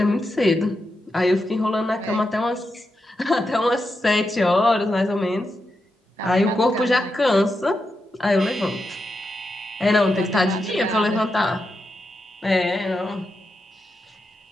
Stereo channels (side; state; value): both; normal; correlation 0.86